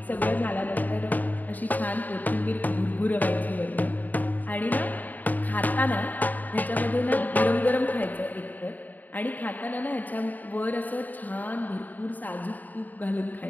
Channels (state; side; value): late; right; 0.083 ms